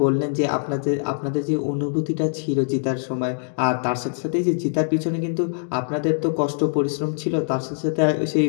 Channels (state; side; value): silent; right; digital silence